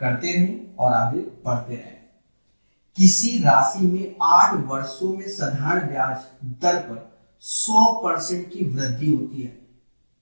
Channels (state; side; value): inverted; both; correlation -1.00